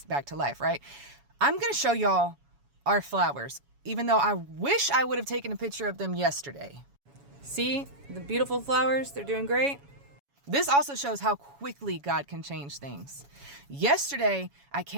back to life, right? I'm going to show y'all our flowers, even though I wish I would have taken a picture of them yesterday. See the beautiful flowers? They're doing great. This also shows how quickly God can change things. Yesterday, I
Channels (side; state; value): left; late; 7.1 ms